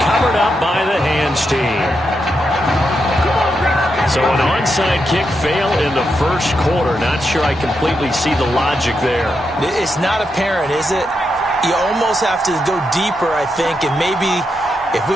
up by the hands team. So an onside kick fail in the first quarter. Not sure I completely see the logic there. It's not apparent, is it? You almost have to go deeper, I think, and maybe if we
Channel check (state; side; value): normal; both; correlation 0.84